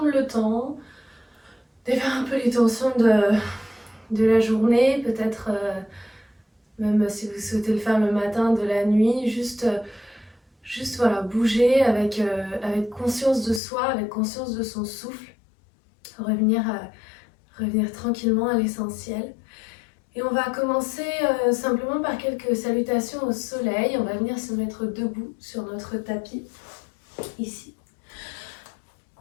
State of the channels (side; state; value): right; drops out; at 13.6 s